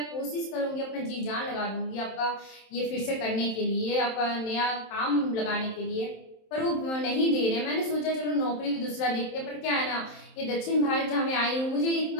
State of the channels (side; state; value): right; late; 27 ms